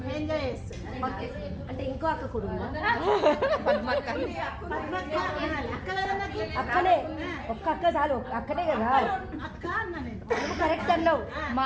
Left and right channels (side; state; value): both; identical; correlation 1.00